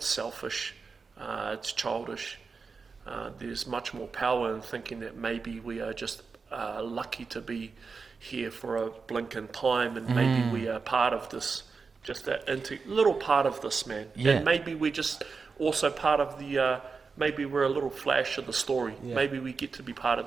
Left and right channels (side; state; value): left; quieter; 4.8 dB